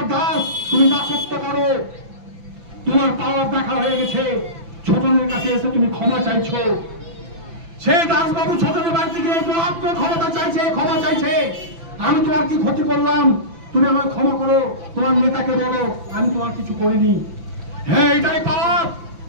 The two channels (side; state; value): left; late; 5.9 ms